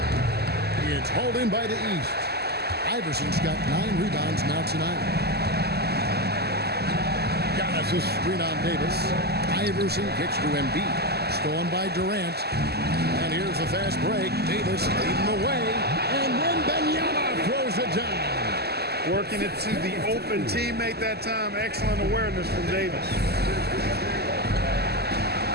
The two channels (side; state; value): left; late; 0.47 ms